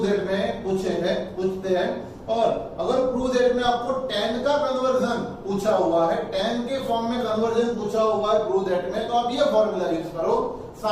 दैट में पूछते हैं, और अगर प्रूव दैट में आपको tan का कन्वर्जन पूछा हुआ है, tan के फॉर्म में कन्वर्जन पूछा हुआ है प्रूव दैट में, तो आप ये फॉर्मूला यूज करो।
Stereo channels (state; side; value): identical; both; correlation 1.00